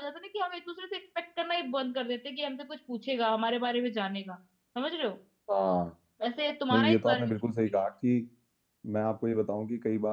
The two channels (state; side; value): identical; both; correlation 1.00